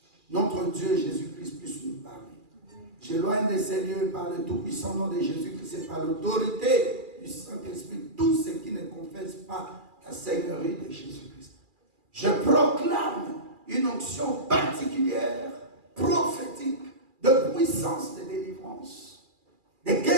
notre Dieu Jésus-Christ puisse nous parler. J'éloigne de ces lieux par le tout-puissant nom de Jésus-Christ et par l'autorité du Saint-Esprit, tous ceux qui ne confessent pas la Seigneurie de Jésus-Christ. Je proclame une onction particulière, prophétique, de puissance de délivrance, de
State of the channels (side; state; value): left; late; 2.4 ms